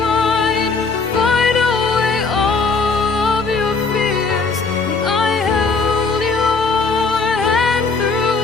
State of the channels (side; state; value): right; quieter; 4.4 dB